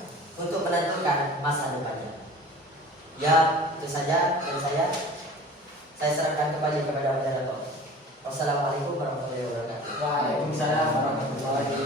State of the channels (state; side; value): normal; both; correlation 0.42